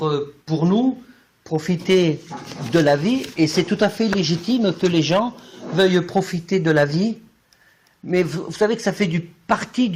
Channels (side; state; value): both; identical; correlation 1.00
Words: pour nous, profiter de la vie, et c'est tout à fait légitime que les gens veuillent profiter de la vie, mais vous savez que ça fait partie